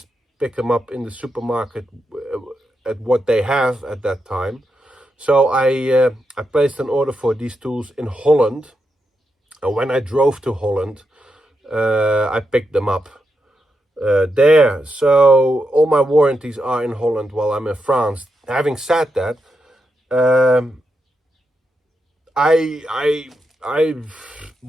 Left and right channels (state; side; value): normal; both; correlation 0.84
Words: pick them up in the supermarket at what they have at that time. So I placed an order for these tools in Holland, and when I drove to Holland, I picked them up there. So all my warranties are in Holland while I'm in France. Having said that, I